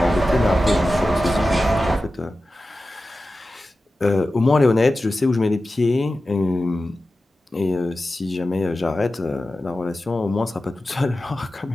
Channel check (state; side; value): normal; both; correlation 0.94